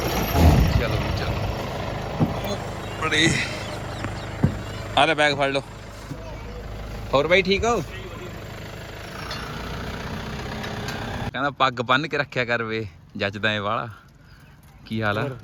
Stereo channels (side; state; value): both; identical; correlation 1.00